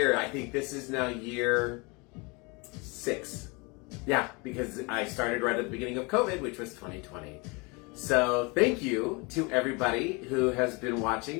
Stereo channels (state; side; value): quieter; right; 28.7 dB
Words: I think this is now year 6. Yeah, because I started right at the beginning of COVID, which was 2020. So thank you to everybody who has been